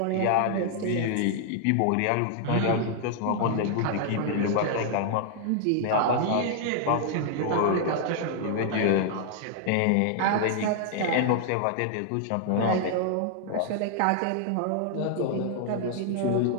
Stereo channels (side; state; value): both; different; correlation -0.01